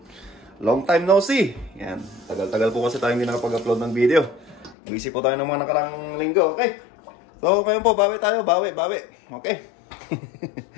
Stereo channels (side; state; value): right; drops out; at 4.8 s